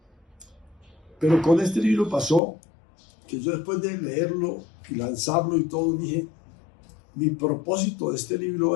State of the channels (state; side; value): drops out; right; at 2.4 s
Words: Pero con este libro pasó que yo, después de leerlo y lanzarlo y todo, dije, mi propósito de este